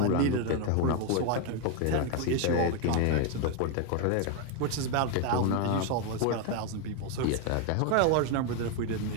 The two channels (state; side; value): different; both; correlation 0.01